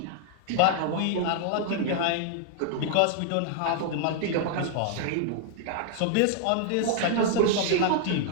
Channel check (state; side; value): different; both; correlation 0.00